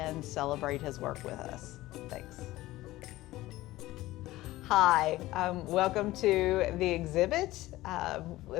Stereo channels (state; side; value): quieter; right; 17.2 dB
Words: celebrate his work with us. Thanks. Hi, welcome to the exhibit,